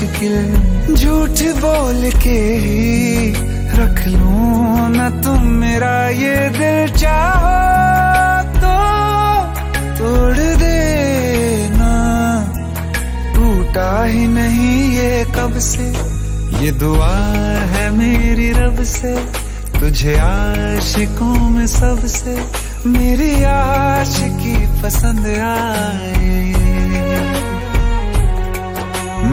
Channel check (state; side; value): identical; both; correlation 1.00